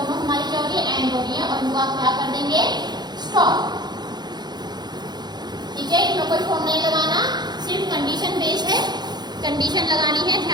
हमारी क्या हो रही है, एंड हो रही है, और इनको आप क्या कर देंगे, स्टॉप, ठीक है। इसमें कोई फॉर्म नहीं लगाना, सिर्फ कंडीशन बेस्ड है, कंडीशन लगानी है,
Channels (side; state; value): left; late; 0.20 ms